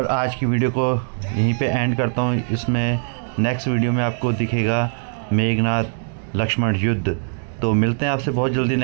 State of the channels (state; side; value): silent; left; digital silence